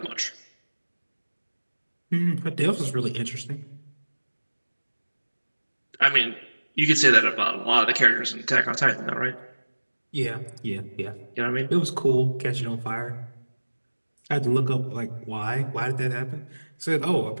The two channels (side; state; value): both; inverted; correlation -1.00